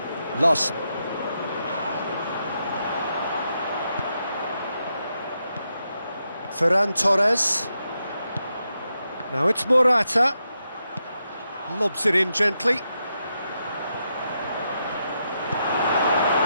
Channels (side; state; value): both; inverted; correlation -0.84